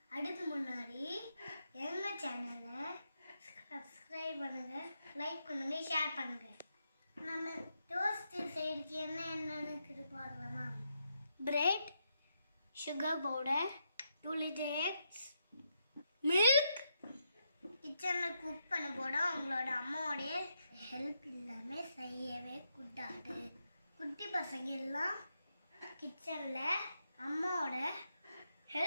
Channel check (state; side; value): inverted; both; correlation -0.81